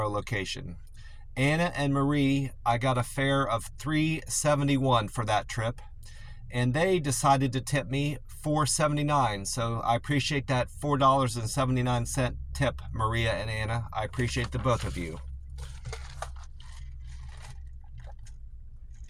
location. Anna and Marie, I got a fare of $3.71 for that trip, and they decided to tip me $4.79. So I appreciate that $4.79 tip, Maria and Anna. I appreciate the both of you.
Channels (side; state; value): both; identical; correlation 1.00